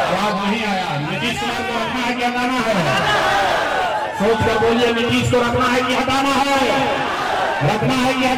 आवाज नहीं आया। नीतीश कुमार को रखना है कि हटाना है? सोच कर बोलिए, नीतीश को रखना है कि हटाना है? रखना है कि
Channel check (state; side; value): identical; both; correlation 1.00